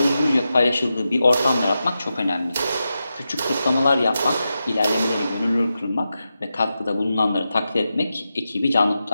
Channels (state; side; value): inverted; both; correlation -0.90